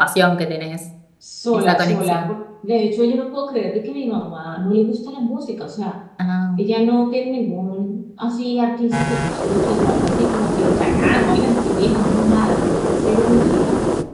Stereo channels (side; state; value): both; identical; correlation 1.00